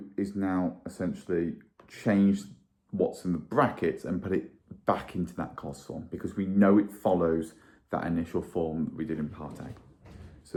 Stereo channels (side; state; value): both; identical; correlation 1.00